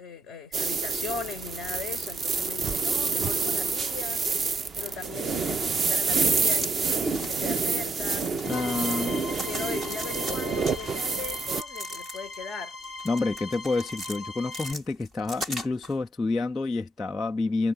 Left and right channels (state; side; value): normal; both; correlation 0.77